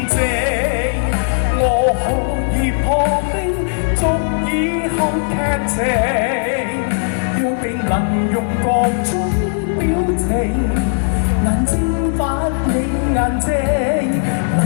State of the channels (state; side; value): silent; right; digital silence